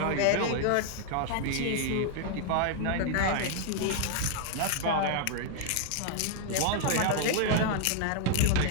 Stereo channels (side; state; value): both; different; correlation 0.00